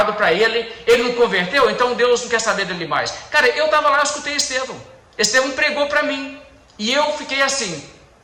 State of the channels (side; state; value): both; identical; correlation 1.00